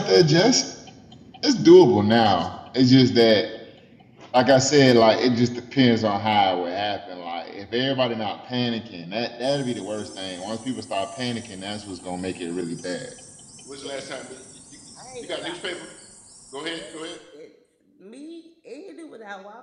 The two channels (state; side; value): identical; both; correlation 1.00